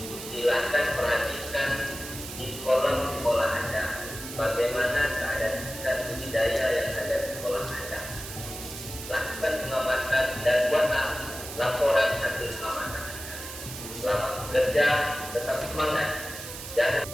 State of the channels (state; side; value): noise; right; hiss, 10 dB below the sound